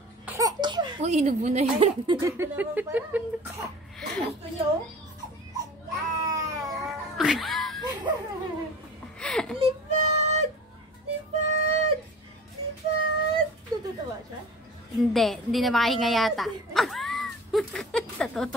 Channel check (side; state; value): both; normal; correlation 0.40